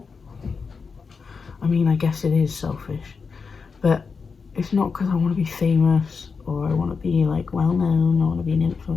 I mean, I guess it is selfish, but it's not because I want to be famous or I want to be like well known, I want to be an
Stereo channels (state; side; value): quieter; right; 5.2 dB